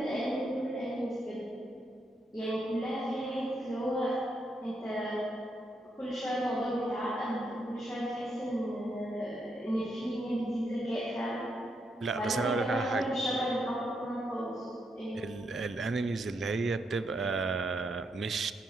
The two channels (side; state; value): both; normal; correlation 0.79